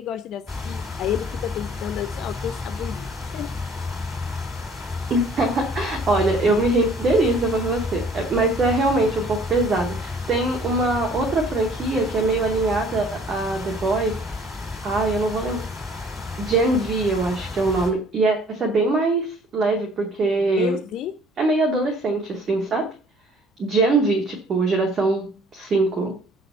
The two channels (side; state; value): both; normal; correlation 0.55